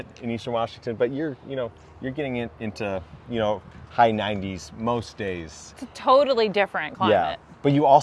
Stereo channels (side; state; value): both; identical; correlation 1.00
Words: in Eastern Washington, but you're getting into, high 90s most days. It's a totally different climate. Yeah, but you